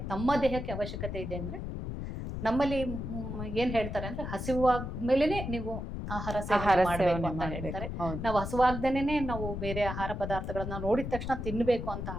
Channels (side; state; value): left; noise; rumble, 5 dB below the sound